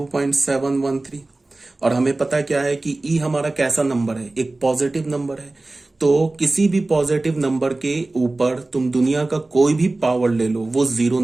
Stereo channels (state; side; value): quieter; left; 3.0 dB